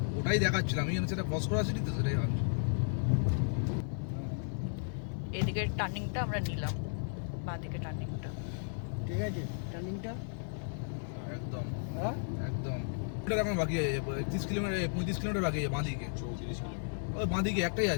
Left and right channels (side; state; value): right; silent; digital silence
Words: ওটাই দেখাচ্ছিলাম। আমি সেটা ক্রস করা সিটি তো, সেটাই ভাবছি। এদিকের টার্নিংটা আমরা নিলাম, বাঁদিকে টার্নিংটা। ঠিক আছে টার্নিংটা একদম হ্যাঁ একদম। ওটা এখন বাকি আছে 30 কিলোমিটার 35 কিলোমিটার বাকি আছে বাঁদিকে। 34 কিলোমিটার। ওই বাঁদিকে একটাই